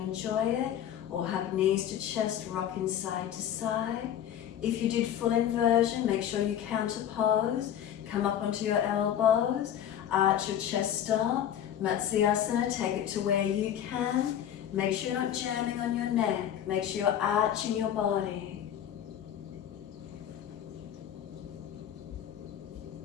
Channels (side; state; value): right; quieter; 10.2 dB